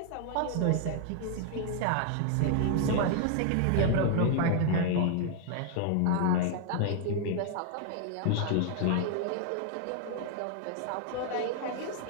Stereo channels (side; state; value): both; different; correlation 0.00